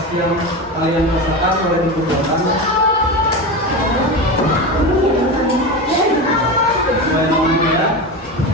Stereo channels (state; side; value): normal; both; correlation 0.22